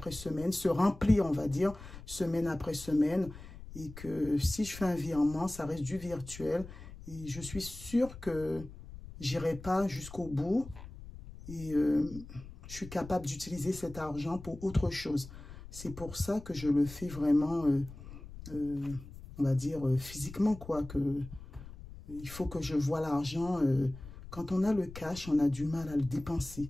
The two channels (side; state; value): left; noise; rumble, 15 dB below the sound